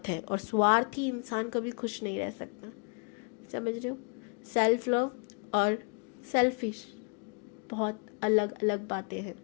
है, और स्वार्थी इंसान कभी खुश नहीं रह सकता। समझ रहे हो? सेल्फ लव और सेल्फिश बहुत अलग अलग बातें हैं,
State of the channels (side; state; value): right; quieter; 38.2 dB